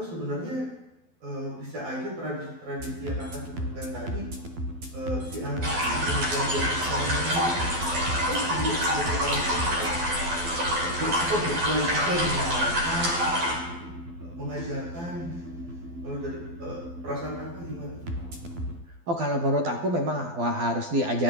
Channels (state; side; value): late; left; 12 ms